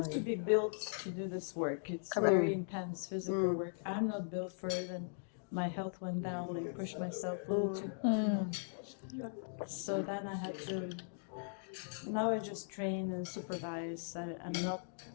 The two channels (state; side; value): silent; right; digital silence